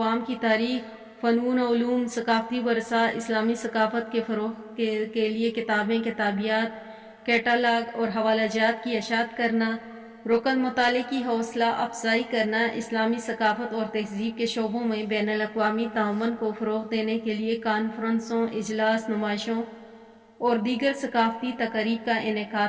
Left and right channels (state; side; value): identical; both; correlation 1.00